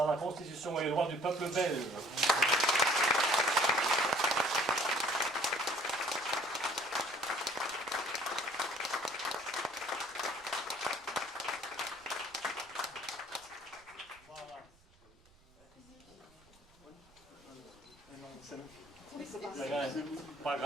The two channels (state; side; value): noise; right; rumble, 29 dB below the sound